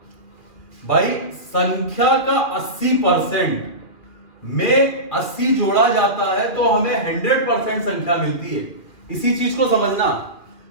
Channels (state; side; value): late; right; 2.4 ms